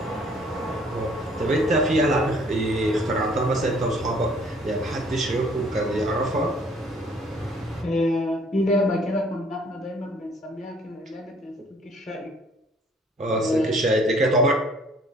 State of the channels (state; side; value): normal; both; correlation 0.58